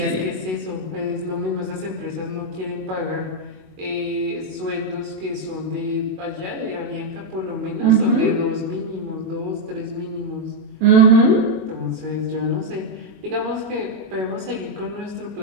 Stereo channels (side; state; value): left; late; 21 ms